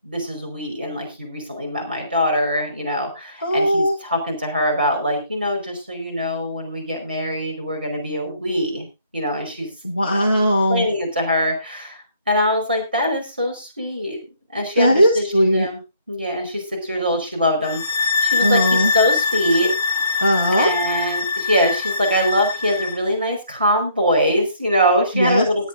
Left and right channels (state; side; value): inverted; both; correlation -0.64